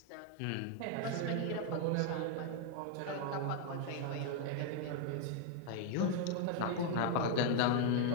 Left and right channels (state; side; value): different; both; correlation 0.00